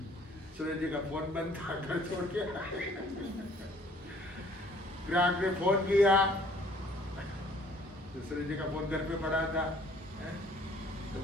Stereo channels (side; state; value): both; normal; correlation 0.57